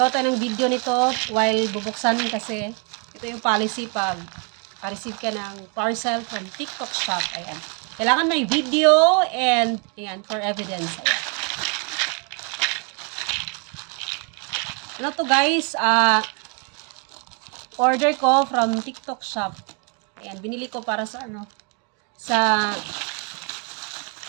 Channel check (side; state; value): left; quieter; 36.5 dB